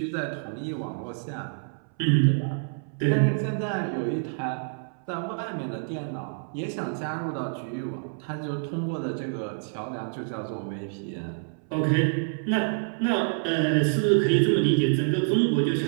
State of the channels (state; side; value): silent; left; 60 dB below the other